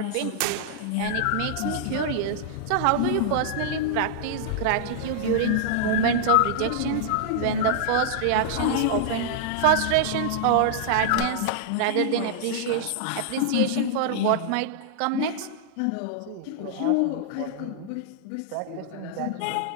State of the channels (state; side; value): different; both; correlation -0.01